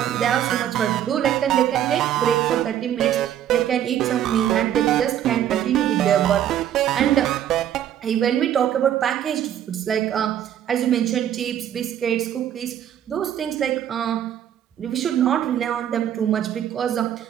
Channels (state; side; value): quieter; left; 10.6 dB